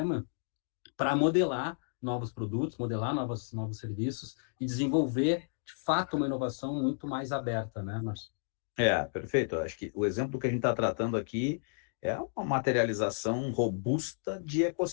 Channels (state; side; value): silent; right; digital silence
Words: para modelar novos produtos, modelar novos serviços e desenvolver, de fato, uma inovação muito mais aberta, né, Márcio? Perfeito. Eu acho que o exemplo que a gente está tratando aqui é uma materialização robusta de